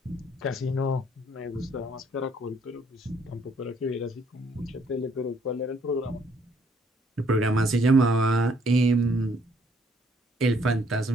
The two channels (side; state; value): both; normal; correlation 0.66